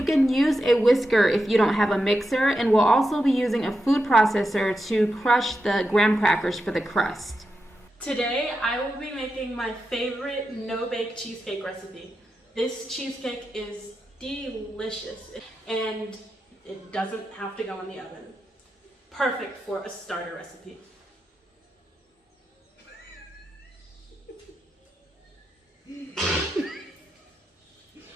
can use a whisker if you don't have a mixer, and we'll also be using a food processor to crush the graham crackers for the crust. Today I will be making my favorite no-bake cheesecake recipe. This cheesecake is delicious and it doesn't have to go in the oven. Perfect for a starter recipe.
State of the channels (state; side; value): normal; both; correlation 0.88